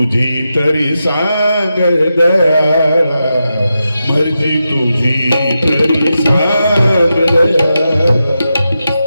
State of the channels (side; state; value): both; inverted; correlation -0.89